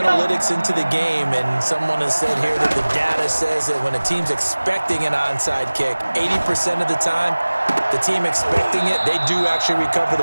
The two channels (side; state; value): both; inverted; correlation -1.00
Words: into the game, and someone has said here that the data says that when a team's expecting an onside kick, 80% of the time, the team expecting it, they do actually recover